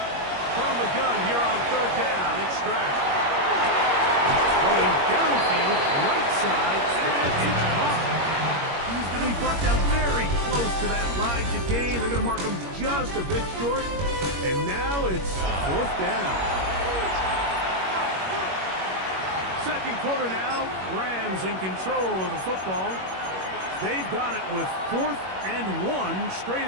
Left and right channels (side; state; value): left; late; 21 ms